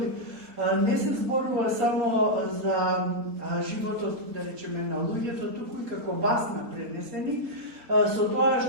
не се зборува само за животот, да речеме, на луѓето, туку и како басна пренесени, со тоа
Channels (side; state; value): left; late; 4.0 ms